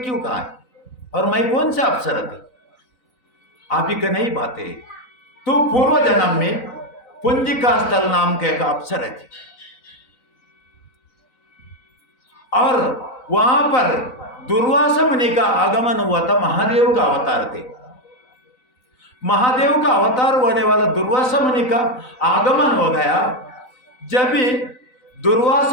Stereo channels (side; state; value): right; late; 3.9 ms